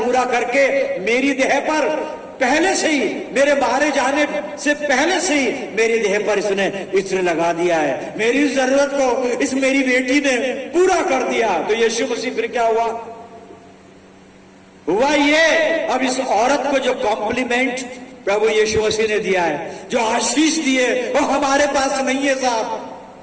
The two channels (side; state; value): both; identical; correlation 1.00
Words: करके मेरी देह पर पहले से ही, मेरे मारे जाने से पहले से ही मेरी देह पर इसने इत्र लगा दिया है। मेरी जरूरत को इस मेरी बेटी ने पूरा कर दिया। तो यीशु मसीह फिर क्या हुआ ये, अब इस औरत को जो कॉम्प्लीमेंट प्रभु यीशु मसीह ने दिया है, जो आशीष दिए, वो हमारे पास नहीं है साहब।